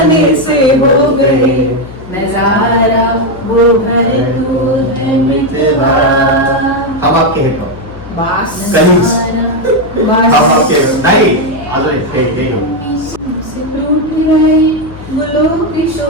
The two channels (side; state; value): left; noise; hum, 16 dB below the sound